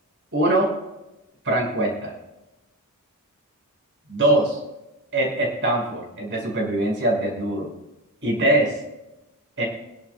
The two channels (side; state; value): both; normal; correlation 0.19